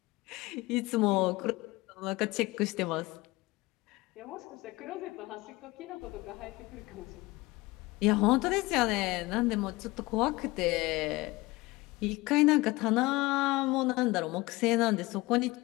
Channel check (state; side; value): quieter; right; 21.3 dB